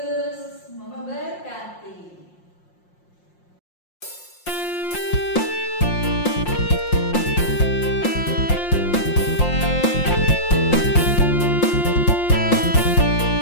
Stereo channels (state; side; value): late; right; 5.6 ms